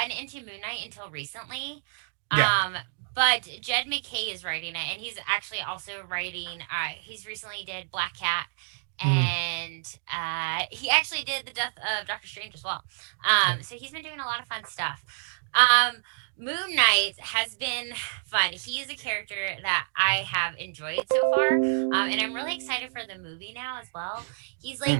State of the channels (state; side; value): silent; left; digital silence